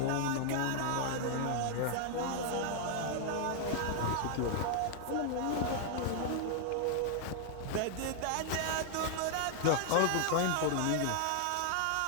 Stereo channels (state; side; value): different; both; correlation 0.00